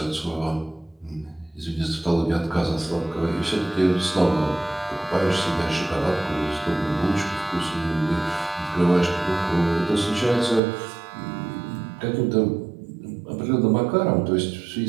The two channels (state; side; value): drops out; left; at 10.6 s